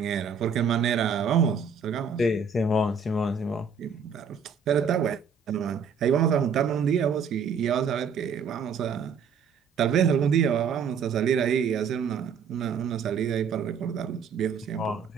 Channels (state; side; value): quieter; left; 5.9 dB